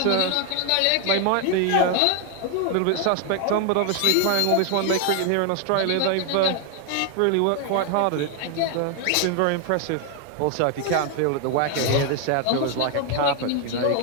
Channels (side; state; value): both; different; correlation 0.00